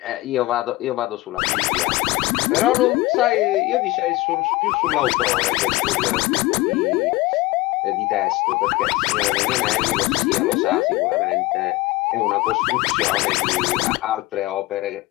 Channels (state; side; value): quieter; right; 19.4 dB